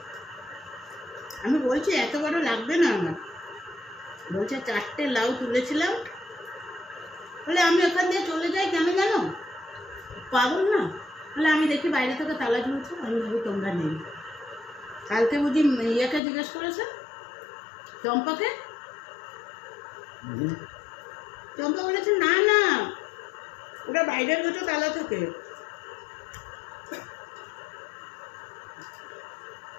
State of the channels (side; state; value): right; drops out; at 16.2 s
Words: আমি বলছি এত বড় লাগবে না আমার, বলছে 4টে লাউ তুলেছিলাম, বলে আমি ওখান দিয়ে চলে যাই কেন জানো, পাগল না। বলে আমি দেখি বাইরে থেকে তালা ঝুলছে, আমি ভাবি তোমরা নেই। কালকে বুঝি ইয়েকে জিজ্ঞেস করেছে, চম্পাকে, চম্পা বলেছে না না ওটা বাইরের গেটে তালা থাকে।